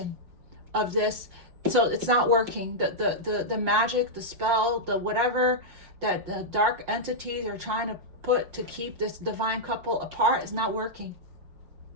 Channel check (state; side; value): late; left; 5.6 ms